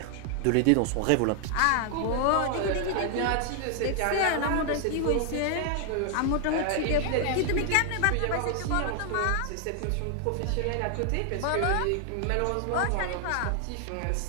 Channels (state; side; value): different; both; correlation 0.00